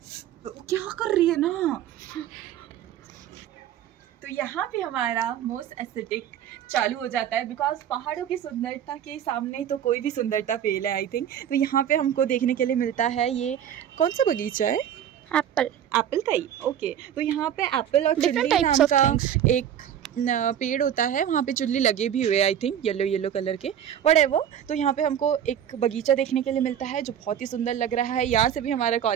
क्या कर रही है ना, तो यहाँ पे हमारा मोस्ट एस्थेटिक चालू हो जाता है, बिकॉज पहाड़ों की सुंदरता के सामने तो कोई भी सुंदरता फेल है आई थिंक। तो यहाँ पे हमको देखने के लिए मिलता है, ये कौन सा बगीचा है, एप्पल का ही, ओके। तो यहाँ पे एप्पल और चुल्ली नाम का एक पेड़ होता है, वहाँ पे चुल्ली लगे भी हुए आई थिंक, येलो कलर के, व्हाटएवर। तो यहाँ पे हमको एक बगीचा देखने के लिए मिलता है जो बहुत ही सुंदर लग रहा है। यहाँ से भी हमारा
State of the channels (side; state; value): left; quieter; 9.8 dB